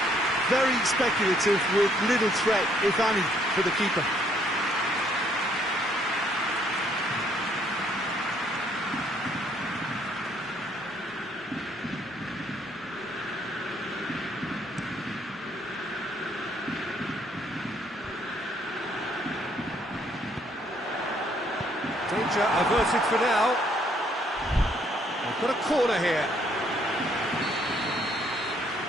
Very speculative with little threat, if any, for the keeper. Danger averted for now. They've got a corner here.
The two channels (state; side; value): normal; both; correlation 0.67